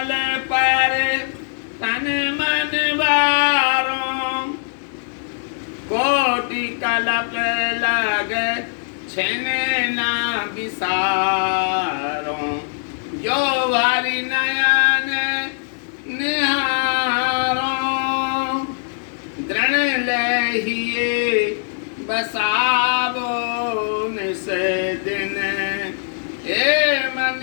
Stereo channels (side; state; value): right; silent; 63 dB below the other